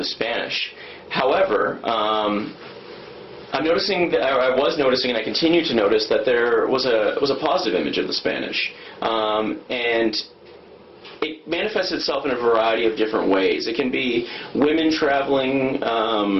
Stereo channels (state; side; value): identical; both; correlation 1.00